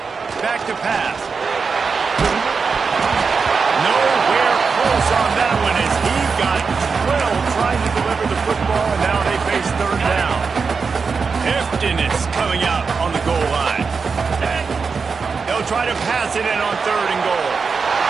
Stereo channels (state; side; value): quieter; left; 5.1 dB